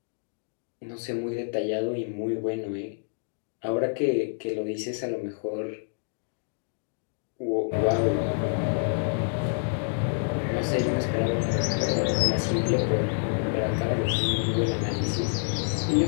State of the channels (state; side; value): silent; right; digital silence